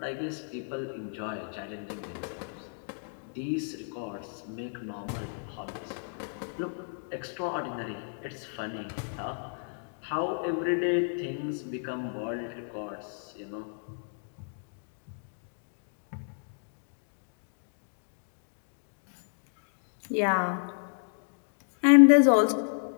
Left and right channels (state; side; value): silent; right; digital silence